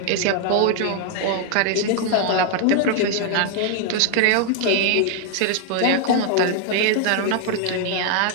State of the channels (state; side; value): different; both; correlation 0.00